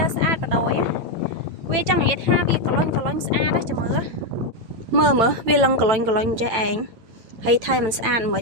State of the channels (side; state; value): left; late; 8.9 ms